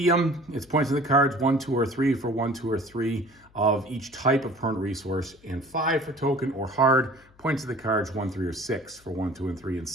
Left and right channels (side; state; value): left; noise; hum, 29 dB below the sound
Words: it's points on the cards, 1, 2, or 3 for 1, 2, or 3 of each type of permanent resource, and 5 for token. Or hard, points of the cards, 1, 3, or 6 for 1, 2, and 3, and